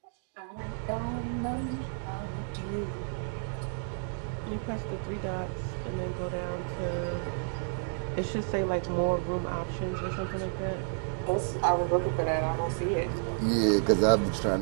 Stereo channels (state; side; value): silent; left; digital silence